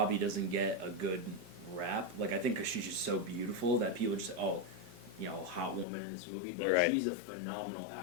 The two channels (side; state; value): right; drops out; at 5.9 s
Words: doesn't get a good rap. Like I think because she's just so beautiful that people just hot woman in this movie. But Right. she's a phenomenal